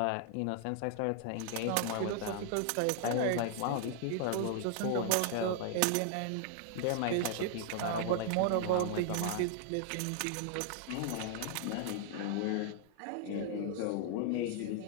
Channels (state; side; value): different; both; correlation 0.00